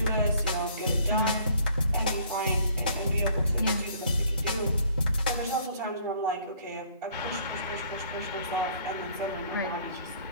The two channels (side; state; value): both; inverted; correlation -0.59